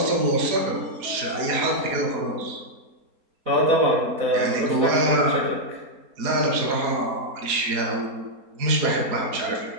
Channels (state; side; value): late; left; 4.3 ms